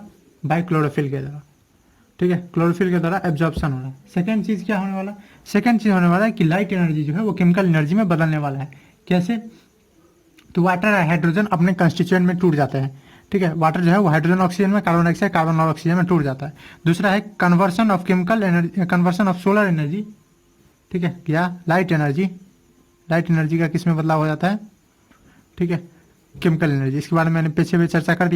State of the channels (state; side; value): identical; both; correlation 1.00